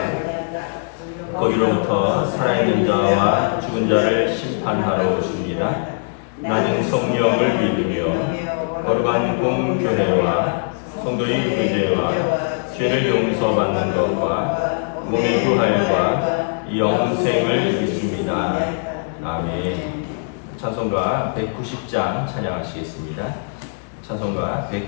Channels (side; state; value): right; silent; digital silence